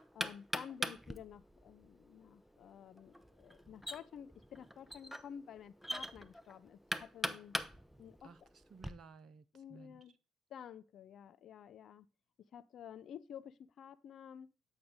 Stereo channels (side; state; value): both; normal; correlation 0.89